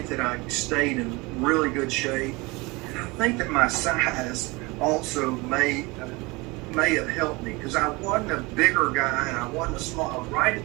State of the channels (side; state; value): left; quieter; 24.7 dB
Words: that I stayed in really good shape. And I think that my size also may have helped me, because I wasn't a bigger guy and I wasn't a small. I was right at